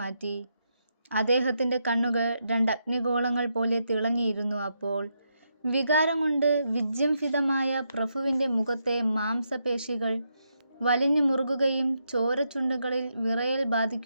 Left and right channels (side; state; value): both; inverted; correlation -0.81